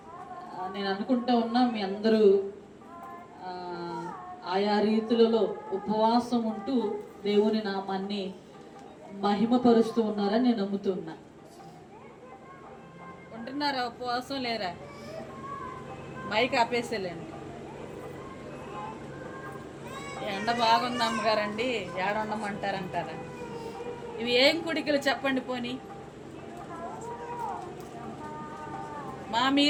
నేను అనుకుంటూ ఉన్నా మీ అందరూ ఆయా రీతులలో ఉపవాసం ఉంటూ దేవుని నామాన్ని మహిమపరుస్తూ ఉన్నారని నేను నమ్ముతున్నా. ఉంటున్నారా? ఉపవాసం లేరా? మైక్ ఆపేసేలేండి. ఎండ బాగుంది అమ్మగారండి, ఏడుండమంటారంటారా? ఇవి ఏం కుడికలు చెప్పండి పోనీ.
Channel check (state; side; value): identical; both; correlation 1.00